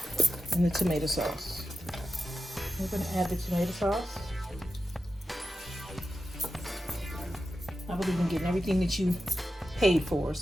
and the tomato sauce. We're going to add the tomato sauce. I believe in getting everything that you paid for,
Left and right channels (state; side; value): normal; both; correlation 0.91